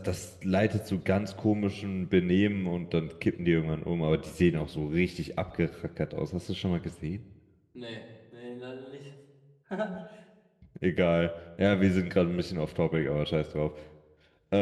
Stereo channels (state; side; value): identical; both; correlation 1.00